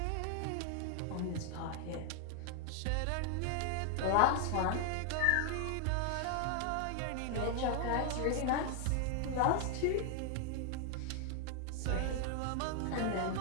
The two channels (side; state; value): both; different; correlation 0.00